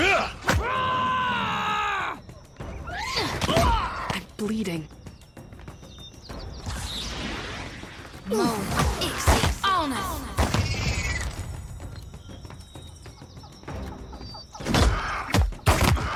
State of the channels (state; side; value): identical; both; correlation 1.00